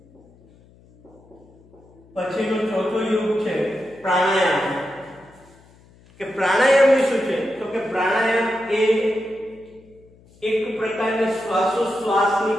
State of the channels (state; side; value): noise; left; hum, 27 dB below the sound